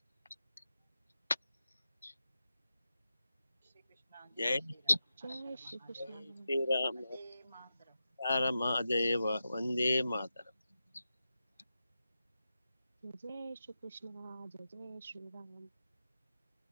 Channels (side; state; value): both; inverted; correlation -0.91